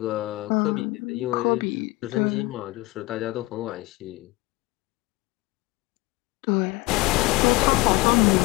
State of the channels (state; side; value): quieter; right; 21.8 dB